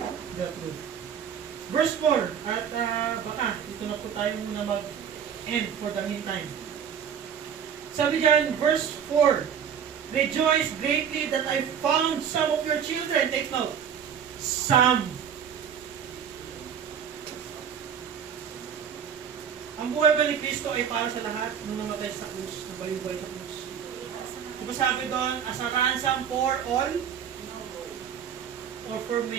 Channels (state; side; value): quieter; left; 8.0 dB